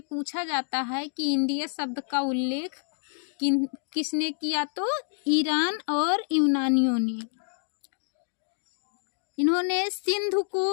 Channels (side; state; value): right; silent; digital silence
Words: पूछा जाता है कि इंडिया शब्द का उल्लेख किसने किया, तो ईरान और यूनानियों ने। इन्होंने